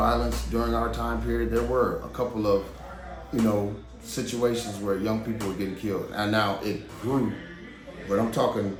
during our time period. There were a couple of, you know, situations where young people were getting killed. And now it grew. But I'm talking,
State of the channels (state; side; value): identical; both; correlation 1.00